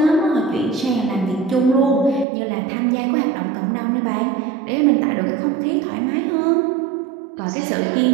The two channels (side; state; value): left; drops out; at 2.2 s